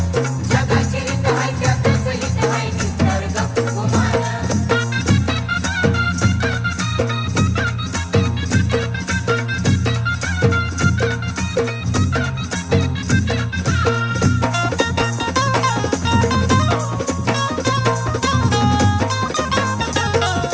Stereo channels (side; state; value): both; identical; correlation 1.00